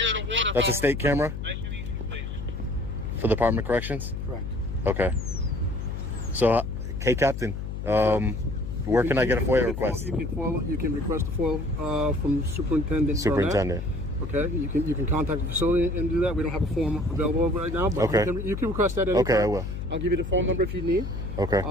That's a state camera for the Department of Corrections. Correct. Okay. So, hey, Captain. Where can I get a FOIA request? You can request a FOIA from Superintendent. Superintendent. Okay, you can contact the facility and do that. We don't have a form available right now, but Okay. you can request that. Anytime. Okay, I will. I'll give you the phone number if you need. Okay.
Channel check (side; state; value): left; noise; hum, 6 dB below the sound